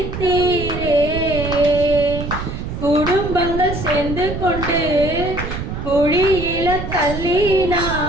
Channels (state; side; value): noise; right; rumble, 6 dB below the sound